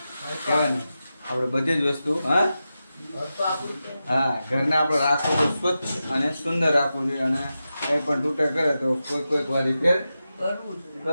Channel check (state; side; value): inverted; both; correlation -0.91